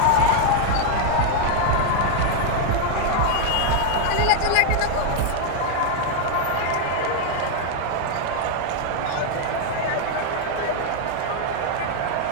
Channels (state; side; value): different; both; correlation 0.00